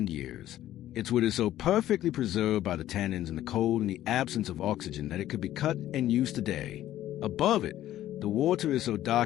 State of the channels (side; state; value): right; quieter; 13.3 dB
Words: years. Its wood is so perfectly preserved by the tannins and the cold and the absence of oxygen that it could be cut and used today. Above it, the water is so